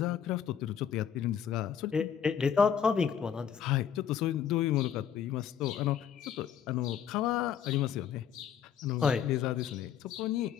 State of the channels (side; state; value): right; quieter; 8.5 dB